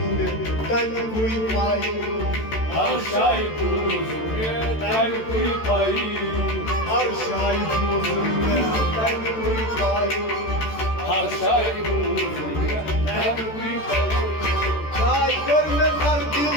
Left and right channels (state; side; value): late; right; 13 ms